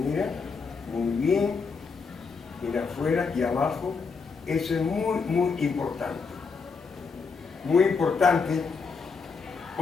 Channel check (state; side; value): quieter; right; 5.0 dB